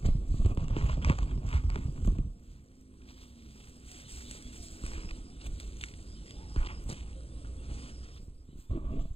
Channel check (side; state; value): right; late; 0.28 ms